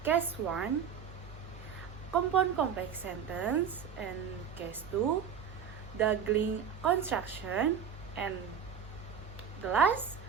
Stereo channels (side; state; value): left; quieter; 7.4 dB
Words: case 1, compound complex sentence, and case 2, dangling construction, and the last,